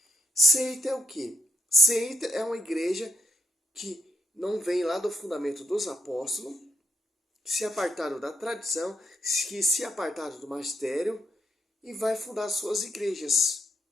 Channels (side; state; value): both; normal; correlation 0.77